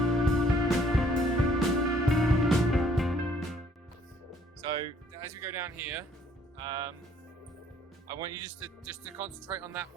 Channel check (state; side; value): normal; both; correlation 0.62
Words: So as we go down here, I want you just to concentrate on that